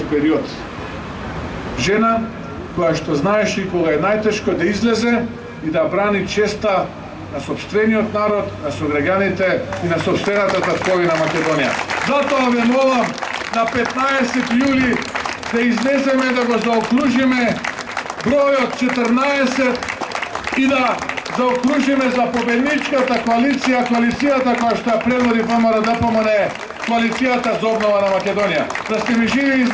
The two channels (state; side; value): identical; both; correlation 1.00